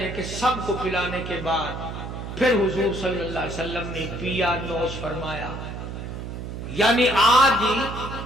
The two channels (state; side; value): noise; right; hum, 8 dB below the sound